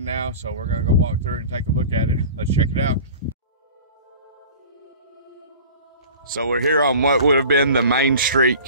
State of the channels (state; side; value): inverted; both; correlation -0.40